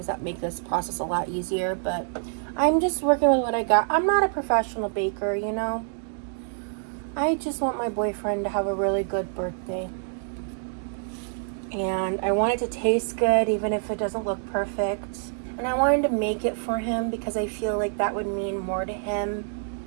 that make this process a lot easier, but I'm just working with what I got. I'm not a professional baker, you know? I just want my boyfriend to have a really good birthday. And I want it to taste good, even if it doesn't look perfect. And I wanted to make it for him because I feel like that would mean more to him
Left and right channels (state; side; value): silent; left; digital silence